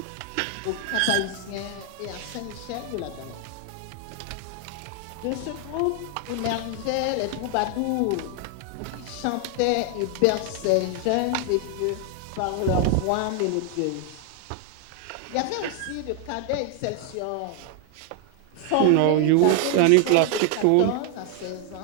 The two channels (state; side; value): different; both; correlation 0.00